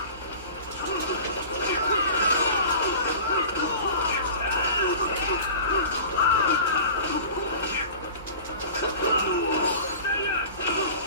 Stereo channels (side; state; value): both; inverted; correlation -0.39